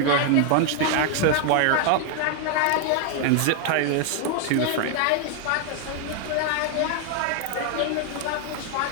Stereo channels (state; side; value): different; both; correlation 0.00